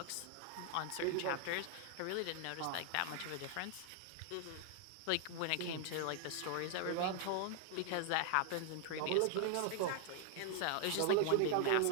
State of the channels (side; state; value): both; different; correlation 0.00